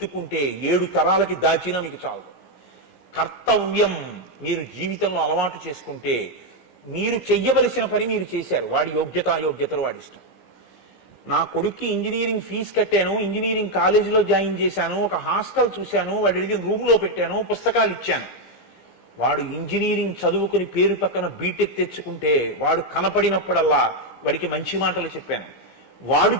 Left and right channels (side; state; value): right; late; 17 ms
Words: 7 తరాలకి దాచినా మీకు చాలు. కర్తవ్యం మీరు జీవితంలో అలవాటు చేసుకుంటే, మీరు చెయ్యవలసిన పని మీరు చేశారు, వాడి యోగ్యత అయోగ్యతలు వాడి ఇష్టం. నా కొడుక్కి ఇంజనీరింగ్ ఫీజు కట్టాను, ఇంజనీరింగ్ కాలేజీలో జాయిన్ చేశాను, ఒక హాస్టల్ చూశాను, వాడి అడిగిన రూమ్లో పెట్టాను, పుస్తకాలు ఇచ్చాను. వాడు ఇంజనీరింగ్ చదువుకుని పేరు పక్కన బీటెక్ తెచ్చుకుంటే, వాడు కనపడినప్పుడల్లా వాడికి మంచి మాటలు చెప్పాను. వాడు